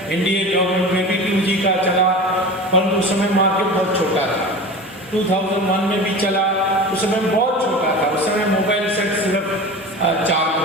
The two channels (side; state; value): both; normal; correlation 0.33